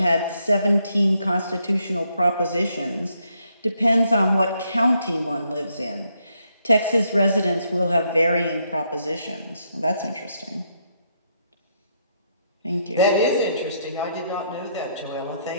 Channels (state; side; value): inverted; both; correlation -0.75